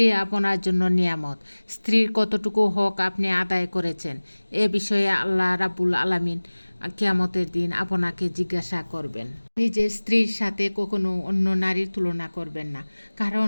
আপনার জন্য নিয়ামত। স্ত্রীর কতটুকু হক আপনি আদায় করেছেন, এ বিষয়ে আল্লাহ রাব্বুল আলামিন কিয়ামতের দিন আপনাকে জিজ্ঞাসা করবেন। নিজের স্ত্রীর সাথে কখনো অন্য নারীর তুলনা করবেন না,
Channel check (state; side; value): inverted; both; correlation -1.00